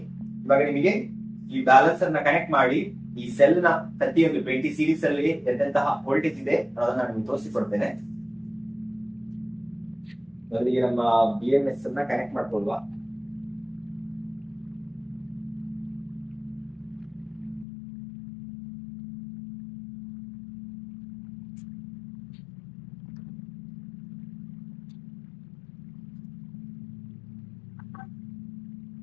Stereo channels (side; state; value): right; drops out; at 17.7 s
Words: ಇವಾಗ ನಿಮಗೆ ಈ ಬ್ಯಾಲೆನ್ಸರ್ ನ ಕನೆಕ್ಟ್ ಮಾಡಿ ಈ ಸೆಲ್ ನ ಪ್ರತಿಯೊಂದು 20 ಸೀರೀಸ್ ಅಲ್ಲಿ ಎಂತೆಂತಹ ವೋಲ್ಟೇಜ್ ಇದೆ ಅದನ್ನ ನಾನು ನಿಮ್ಗೆ ತೋರಿಸಿಕೊಡ್ತೇನೆ. ಮೊದಲಿಗೆ ನಮ್ಮ BMS ಅನ್ನ ಕನೆಕ್ಟ್ ಮಾಡ್ಕೊಳ್ಳುವ.